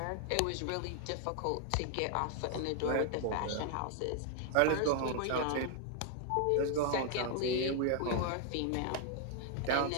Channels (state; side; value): different; both; correlation 0.00